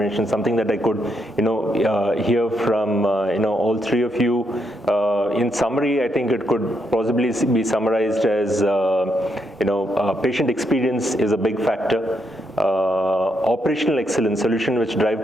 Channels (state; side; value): normal; both; correlation 0.79